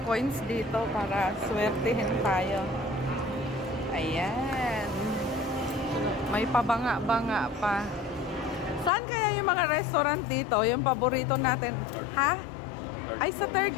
coins dito para swertihin tayo. Ayan. May pabanga-banga pa. Saan kaya yung mga restaurant dito? Yung paborito natin. Ha? Ay, sa third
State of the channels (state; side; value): drops out; right; at 8.9 s